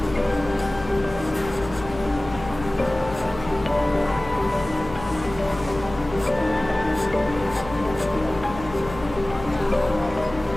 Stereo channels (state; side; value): noise; left; hum, 13 dB below the sound